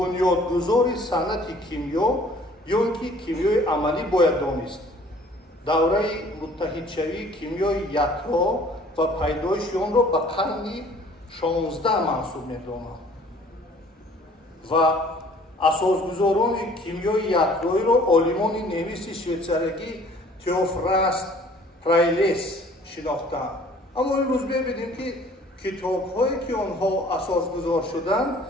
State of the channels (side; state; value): both; normal; correlation 0.54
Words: صنعت کیمیا یا اینکه کیمیای عملی باید دانست. دوره متحدشوی کیمیای یکتا و پیدایش آن را به قرن 16 منسوب می‌دانند و اساسگزاران کیمیای یکتایی را عالمان نویس شویتزاری تئوفراست پرایلیس شناختند. اما امروز ببینیم که کتاب‌هایی که آنها اساسگذار شدند